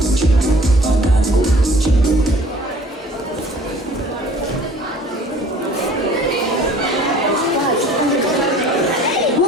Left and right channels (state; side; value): normal; both; correlation 0.51